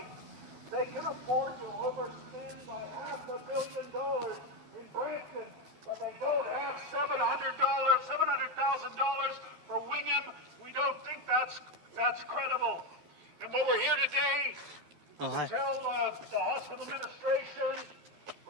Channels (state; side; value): late; left; 12 ms